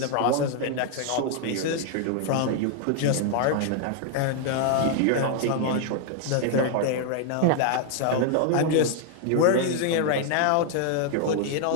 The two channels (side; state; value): both; different; correlation 0.00